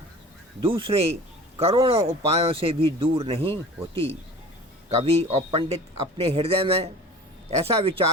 दूसरे करोड़ों उपायों से भी दूर नहीं होती। कवि और पंडित अपने हृदय में ऐसा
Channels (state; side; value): normal; both; correlation 0.41